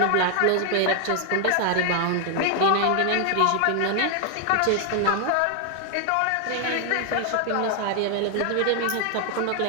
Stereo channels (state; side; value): different; both; correlation 0.00